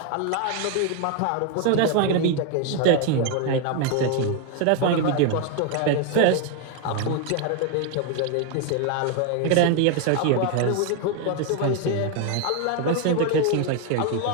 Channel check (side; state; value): both; different; correlation 0.01